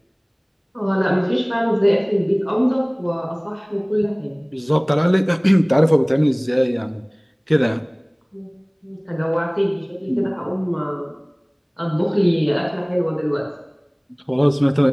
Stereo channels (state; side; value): identical; both; correlation 1.00